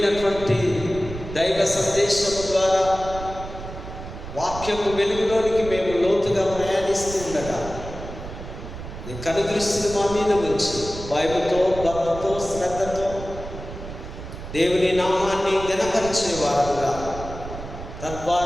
దైవ సందేశము ద్వారా వాక్యము వెలుగులోనికి మేము లోతుగా ప్రయాణిస్తుండగా నీ కనుదృష్టిని మా మీద ఉంచి భయముతో, భక్తితో, శ్రద్ధతో దేవుని నామాన్ని ఘనపరిచే వారుగా,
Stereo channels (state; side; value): noise; right; rumble, 11 dB below the sound